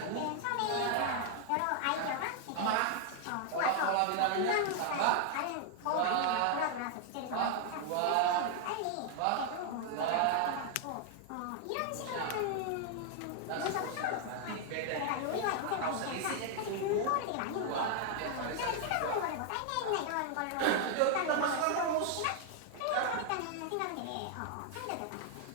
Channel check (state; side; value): different; both; correlation 0.00